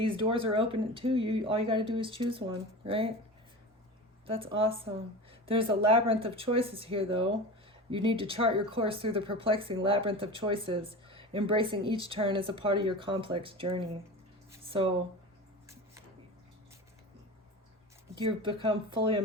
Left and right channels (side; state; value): both; normal; correlation 0.31